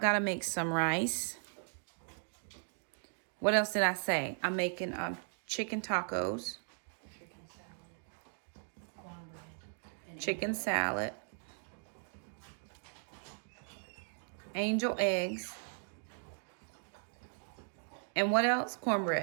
gotta make some rice. What else did I say? I'm making chicken tacos. Chicken salad, angel eggs, and what else?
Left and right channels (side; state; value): left; silent; 53 dB below the other